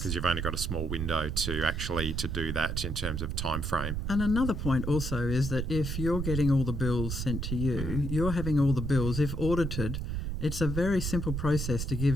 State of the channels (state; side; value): noise; right; rumble, 3 dB below the sound